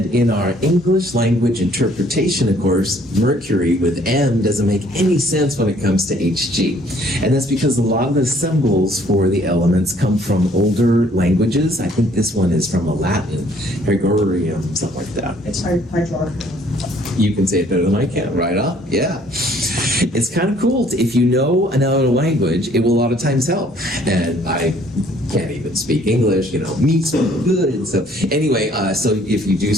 in our English language interpretation, of course, mercury with M doesn't make any sense when it comes to Hg. And that's because a lot of the symbols for the elements come from older languages. I think this one is from a Latin, Gregorium, something like that. It's hydrogen. You can say it better than I can, right up? Yeah. It's kind of cool. If you know another language, it will a lot of times help. And I can't even speak English, me so good. So anyway, so if you do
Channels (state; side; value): normal; both; correlation 0.61